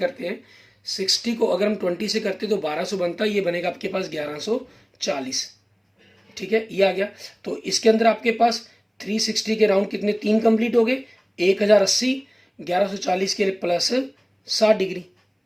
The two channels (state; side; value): identical; both; correlation 1.00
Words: हैं, 60 को अगर हम 20 से करते हैं तो 1200 बनता है, ये बनेगा आपके पास 1140, ठीक है, ये आ गया। तो इसके अंदर आपके पास 360 के राउंड कितने 3 कंप्लीट हो गए, 1080, 1140 के लिए प्लस 60 डिग्री,